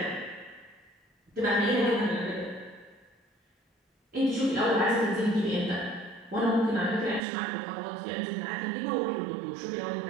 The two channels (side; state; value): left; drops out; at 7.2 s